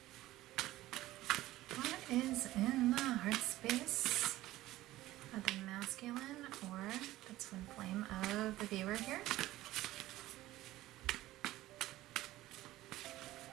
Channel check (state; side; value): quieter; left; 16.1 dB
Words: is in the heart space of the masculine or the twin flame of the viewer here?